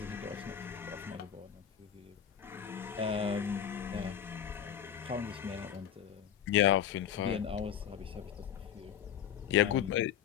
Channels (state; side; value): quieter; right; 9.3 dB